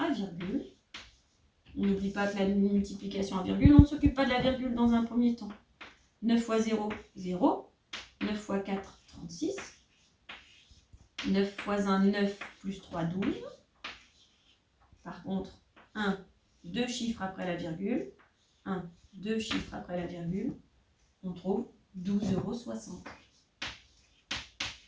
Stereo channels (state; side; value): identical; both; correlation 1.00